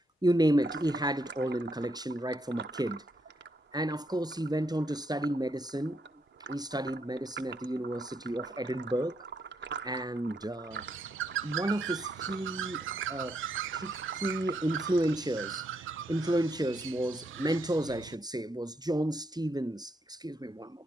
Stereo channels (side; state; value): both; normal; correlation 0.77